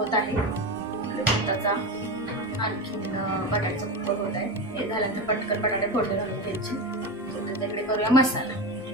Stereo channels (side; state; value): both; normal; correlation 0.20